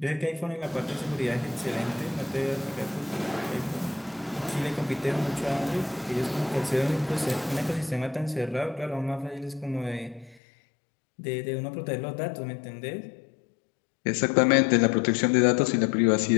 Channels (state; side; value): drops out; right; at 10.4 s